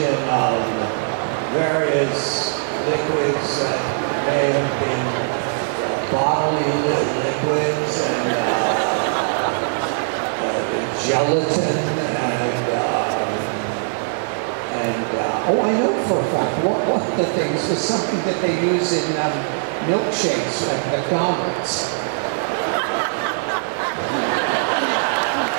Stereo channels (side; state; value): left; silent; digital silence